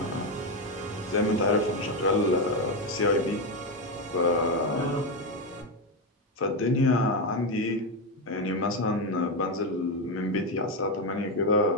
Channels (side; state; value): both; normal; correlation 0.10